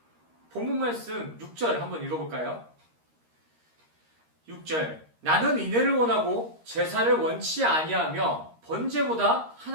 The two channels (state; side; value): late; left; 13 ms